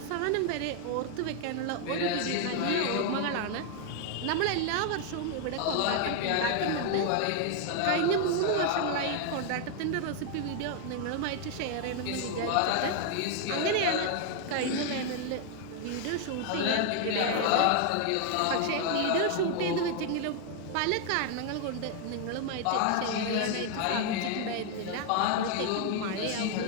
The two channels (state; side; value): different; both; correlation 0.00